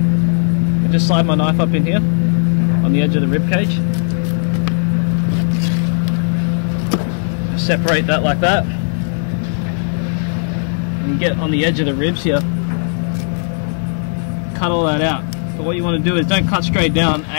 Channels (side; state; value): right; silent; 60 dB below the other